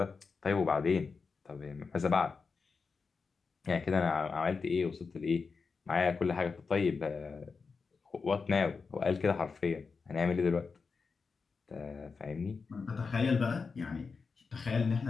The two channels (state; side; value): quieter; right; 4.9 dB